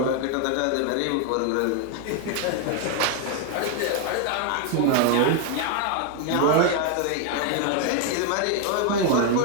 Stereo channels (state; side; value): different; both; correlation 0.01